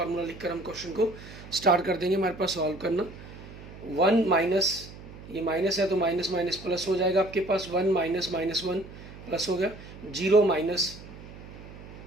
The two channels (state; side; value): noise; right; hum, 16 dB below the sound